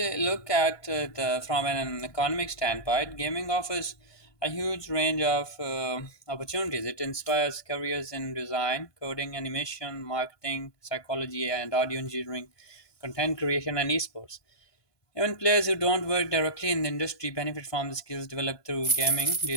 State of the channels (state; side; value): late; right; 1.5 ms